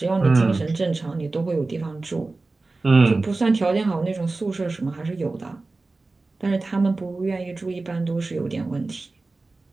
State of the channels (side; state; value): left; quieter; 3.4 dB